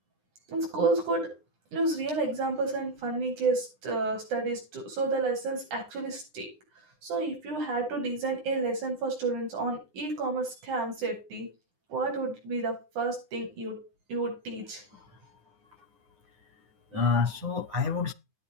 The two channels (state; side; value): late; left; 9.8 ms